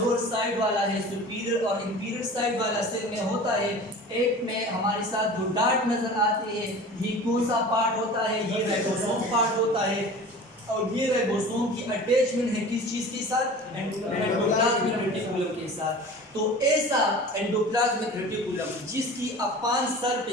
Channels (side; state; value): both; normal; correlation 0.39